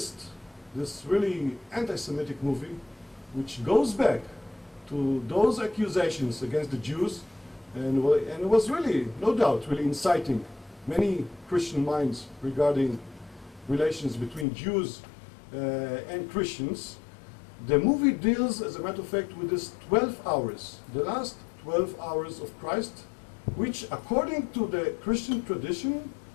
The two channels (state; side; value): drops out; right; at 14.5 s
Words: this really anti-Semitic movie, which goes back to those accusations against the Jews, and it was really, no doubt, really inciting many Christian minds regarding relations between Jews and Christians. The movie deals, as a matter of fact, with this 12 hours, the last 12 hours of Christ, which, according to the Christian tradition,